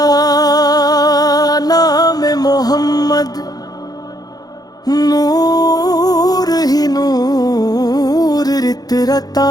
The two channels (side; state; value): right; late; 0.19 ms